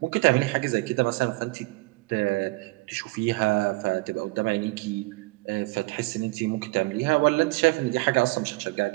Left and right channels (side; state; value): left; quieter; 23.3 dB